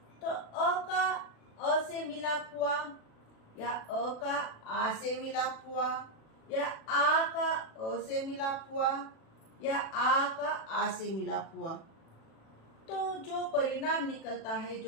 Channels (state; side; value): late; right; 36 ms